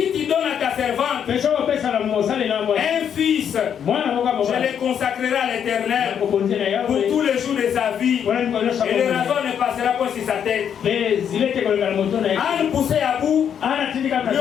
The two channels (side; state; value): right; quieter; 8.4 dB